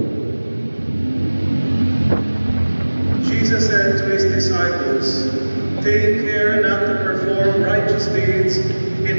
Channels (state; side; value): inverted; both; correlation -1.00